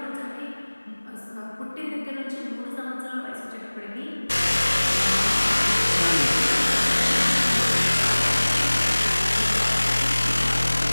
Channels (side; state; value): both; inverted; correlation -1.00